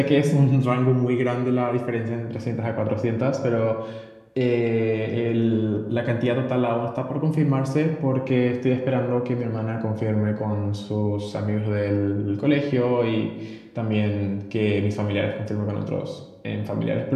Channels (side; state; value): both; identical; correlation 1.00